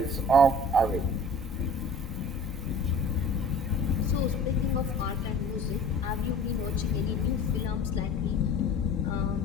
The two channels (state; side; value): normal; both; correlation 0.43